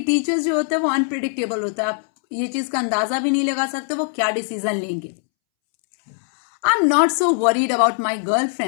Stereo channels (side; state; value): right; silent; 65 dB below the other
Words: टीचर्स जो होते हैं वो अनप्रिडिक्टेबल होता है, आप ये चीज का अंदाजा भी नहीं लगा सकते वो क्या डिसीजन लेंगे। आई am not so worried about my girl